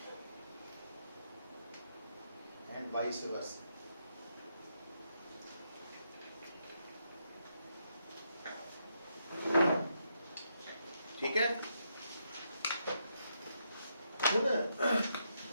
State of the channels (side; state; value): both; inverted; correlation -0.79